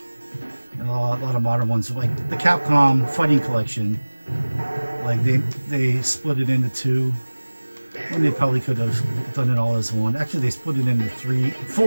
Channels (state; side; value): inverted; both; correlation -1.00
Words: and a lot of modern ones, like the Capcom Fighting Collection, like they split it into two, and they probably could have done it all as one. Actually, they split it into